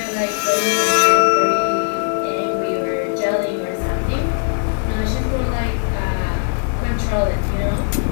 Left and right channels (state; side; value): silent; right; digital silence